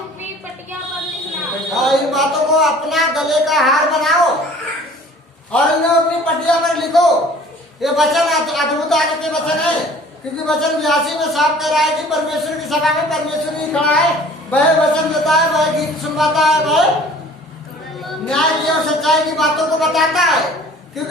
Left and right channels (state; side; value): normal; both; correlation 0.49